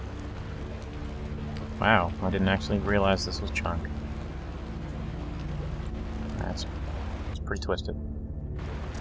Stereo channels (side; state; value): both; identical; correlation 1.00